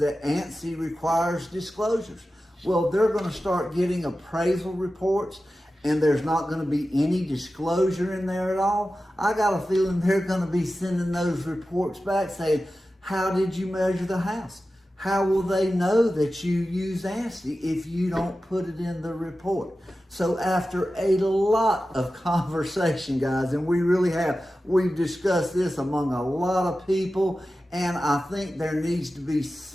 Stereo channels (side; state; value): both; normal; correlation 0.94